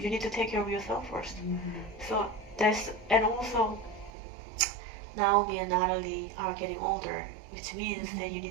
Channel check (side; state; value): left; drops out; at 4.1 s